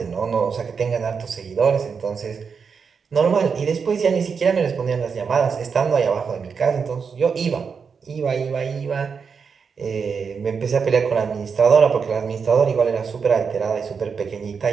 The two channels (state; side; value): quieter; left; 5.9 dB